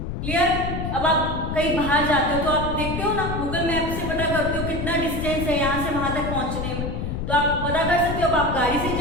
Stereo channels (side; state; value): left; noise; rumble, 4 dB below the sound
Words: क्लियर। अब आप कहीं बाहर जाते हो तो आप देखते हो ना, गूगल मैप से पता करते हो कितना डिस्टेंस है यहाँ से वहां तक पहुंचने में, तो आप पता कर सकते हो। अब आप गाड़ी से